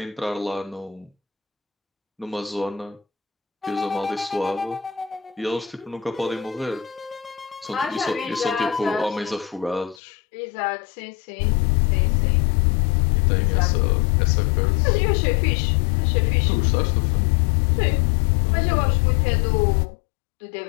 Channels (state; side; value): drops out; right; at 10.0 s